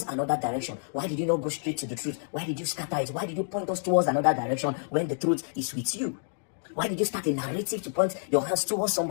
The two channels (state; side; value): silent; right; digital silence